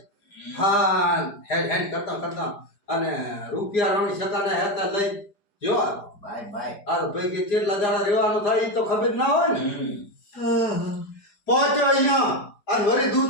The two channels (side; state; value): right; late; 4.9 ms